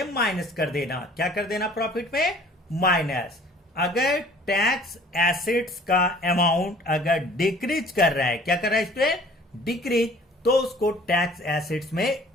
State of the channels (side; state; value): both; normal; correlation 0.52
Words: माइनस कर देना। क्या कर देना प्रॉफिट में, माइनस। अगर टैक्स एसेट्स का अमाउंट अगर डिक्रीज कर रहा है, क्या कर रहा है स्टूडेंट, डिक्रीज, तो उसको टैक्स एसेट्स में